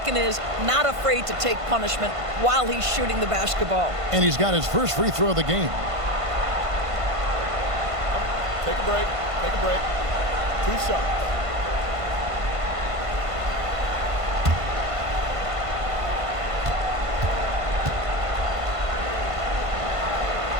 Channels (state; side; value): late; left; 1.5 ms